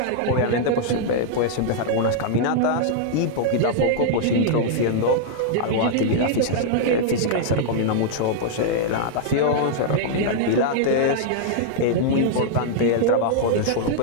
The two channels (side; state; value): both; different; correlation -0.01